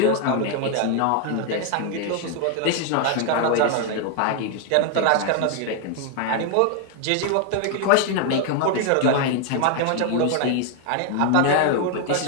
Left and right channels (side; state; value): both; different; correlation 0.00